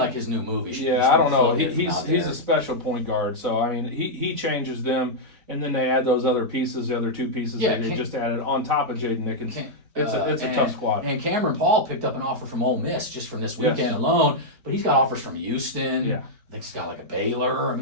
his new move. I don't know. He's a special point guard. So I mean, he changes them, and then they add those other pieces, the other two pieces that they just added on top of Jaden Nickens. It's a tough squad. And Cameron Paul picked up an offer from Ole Miss just from this weekend alone, but he's got offers from Houston. I think he's got like a Baylor. I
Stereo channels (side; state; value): left; late; 4.0 ms